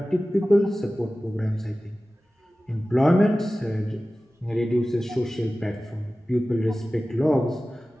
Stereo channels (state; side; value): normal; both; correlation 0.96